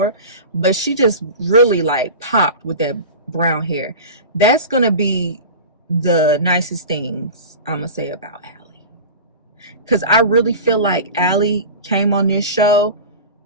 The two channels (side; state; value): both; inverted; correlation -0.32